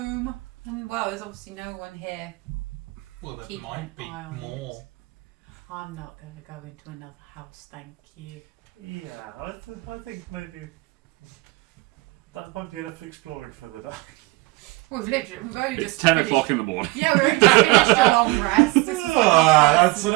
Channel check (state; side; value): quieter; left; 22.3 dB